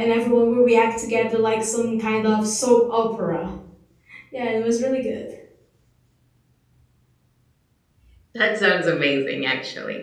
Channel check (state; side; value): identical; both; correlation 1.00